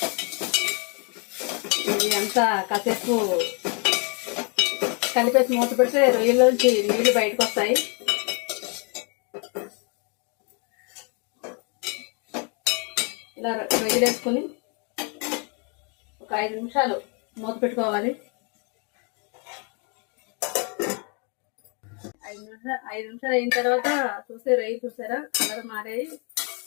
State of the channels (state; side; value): quieter; right; 36.2 dB